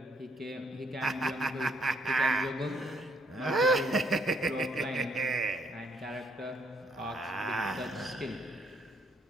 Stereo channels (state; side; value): normal; both; correlation 0.69